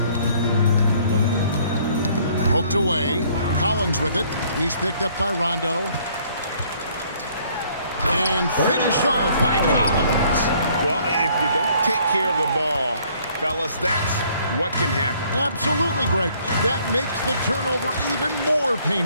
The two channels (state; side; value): inverted; both; correlation -0.61